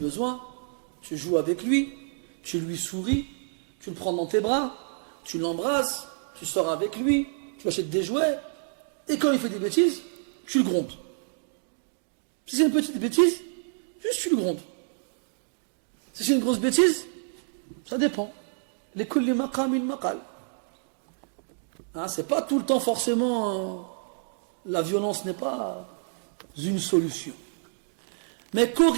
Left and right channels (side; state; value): left; silent; digital silence